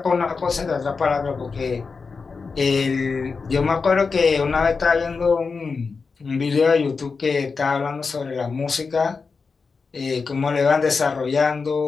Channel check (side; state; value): right; quieter; 4.8 dB